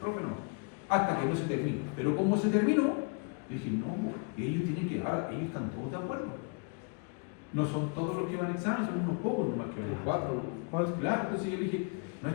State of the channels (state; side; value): quieter; right; 34.5 dB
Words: no. Hasta que no se termine. Pero como se terminó, dije, no, ellos tienen que, ahora ellos están todos de acuerdo. No son todos los que van al examen, son unos pocos nomás que van. 4. Claro, entonces yo dije, no